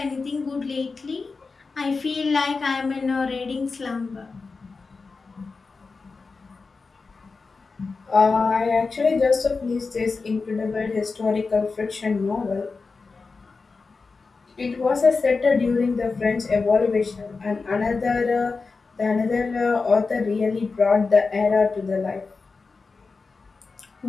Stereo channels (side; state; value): right; quieter; 4.3 dB